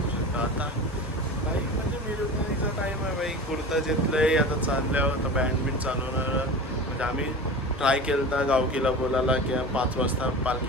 शकता. आता काही म्हणजे मिरवणुकीचा टाईम आहे बाई, कुर्ता घेतलं आहे आता चालल्यावर, तर बँड बिंड चालवणार. म्हणजे आम्ही ट्राय केलं होता गावकीला बोलायला की 5 वाजता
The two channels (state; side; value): normal; both; correlation 0.33